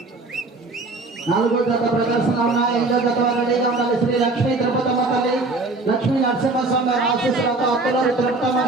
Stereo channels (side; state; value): left; quieter; 3.3 dB